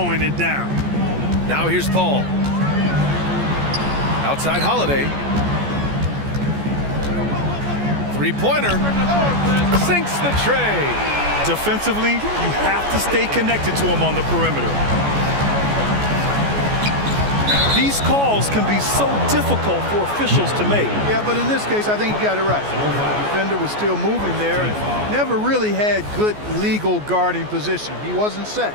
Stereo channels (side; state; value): left; late; 14 ms